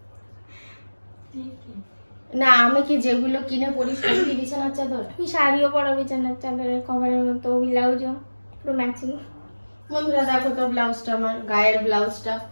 না আমি কি যেগুলো কিনে পরি সেগুলি বিছানার চাদর? আমি শাড়িও পরা বিছানার চাদরের কভারের মতো, ব্লাউজও পুরো ম্যাচিং। বন্ধুরা দেখো তো ব্লাউজটা, আমার গায়ের ব্লাউজটা,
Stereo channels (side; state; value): both; inverted; correlation -1.00